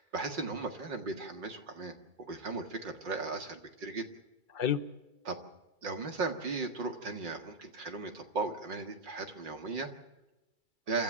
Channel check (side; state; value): left; late; 2.3 ms